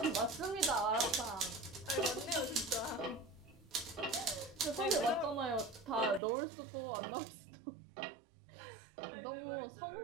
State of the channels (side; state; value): left; drops out; at 6.2 s